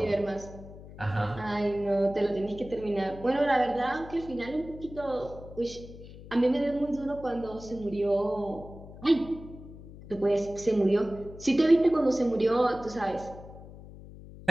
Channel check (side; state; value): left; noise; hum, 16 dB below the sound